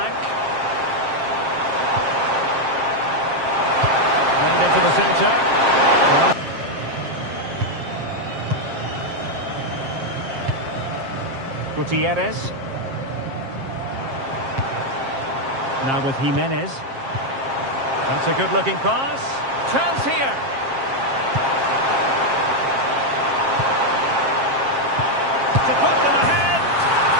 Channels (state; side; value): late; left; 7.5 ms